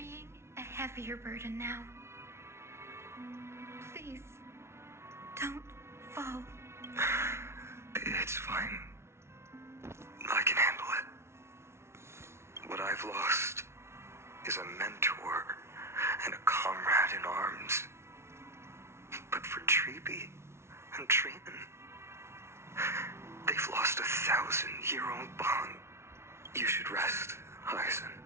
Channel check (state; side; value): late; left; 0.13 ms